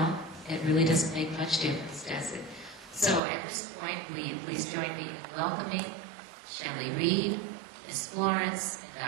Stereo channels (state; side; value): drops out; left; at 3.2 s